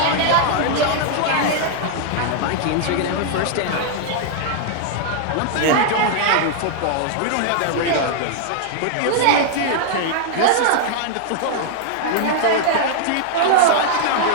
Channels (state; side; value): different; both; correlation 0.00